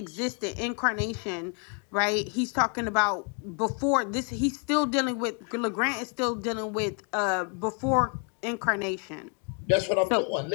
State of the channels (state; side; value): quieter; right; 37.8 dB